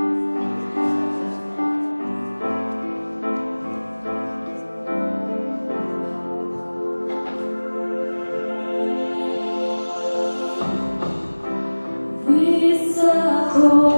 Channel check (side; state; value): both; inverted; correlation -1.00